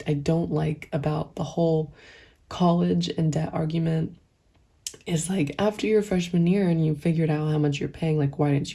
don't like about the whole college and debt argument, is like, after your freshman year and you figured out how much you're paying, like, why didn't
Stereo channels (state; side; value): identical; both; correlation 1.00